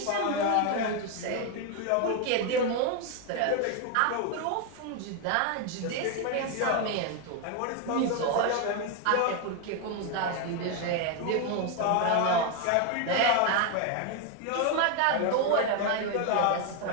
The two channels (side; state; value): both; different; correlation 0.01